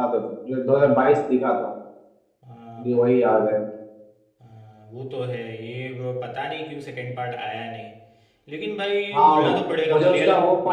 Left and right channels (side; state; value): both; identical; correlation 1.00